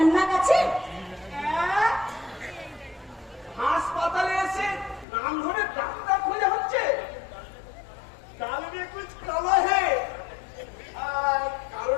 না আছে? হ্যাঁ? হাসপাতালে এসে নাম ধরে ডাক্তার খোঁজা হচ্ছে। ডাল মে কুছ কালা হে।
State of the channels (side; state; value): right; drops out; at 5.1 s